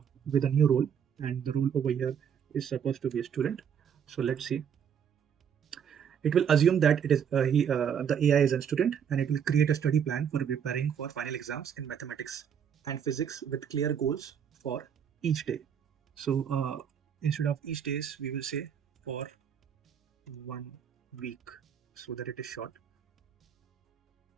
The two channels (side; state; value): left; quieter; 8.1 dB